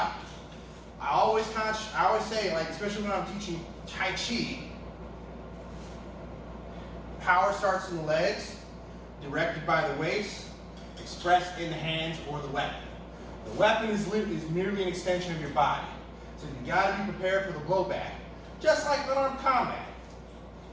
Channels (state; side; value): identical; both; correlation 1.00